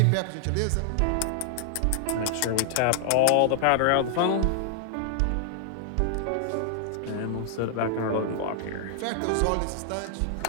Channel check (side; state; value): both; different; correlation -0.01